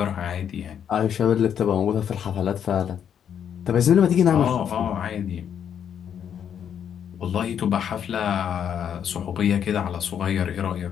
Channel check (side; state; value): right; quieter; 8.6 dB